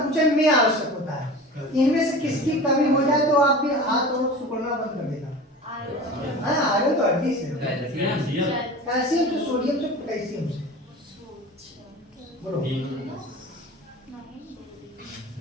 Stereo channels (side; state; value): both; normal; correlation 0.36